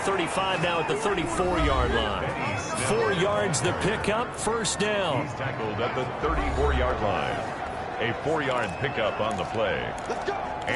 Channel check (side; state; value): both; identical; correlation 1.00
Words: now at the 34-yard line. 4 yards the pickup, first down. He's tackled at the 34-yard line. A 4-yard pickup on the play.